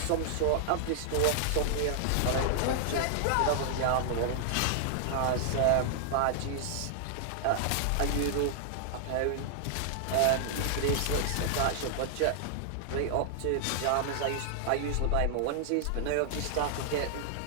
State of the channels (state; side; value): different; both; correlation -0.01